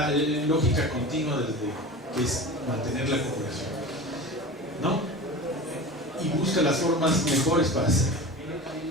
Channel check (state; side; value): normal; both; correlation 0.33